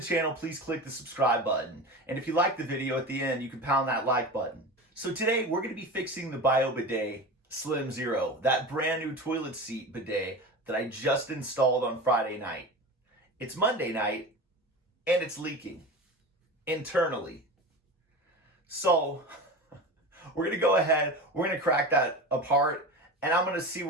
channel, please click the subscribe button. And if you like the video at the end, you can pound that like button. So today we're going to be fixing the Bidet Slim Zero, that brand new toilet seat bidet that I just installed on Friday night. It's Monday night and it's leaking internally. So we're going to go ahead, we're going to crack that apart and I'm going to see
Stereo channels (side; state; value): both; normal; correlation 0.29